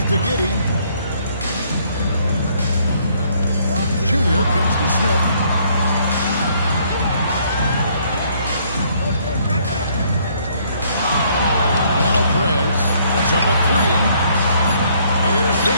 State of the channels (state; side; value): inverted; both; correlation -0.65